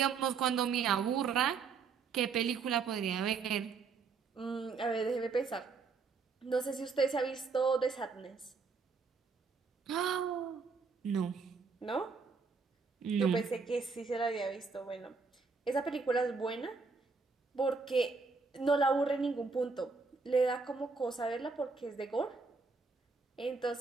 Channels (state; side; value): quieter; left; 4.8 dB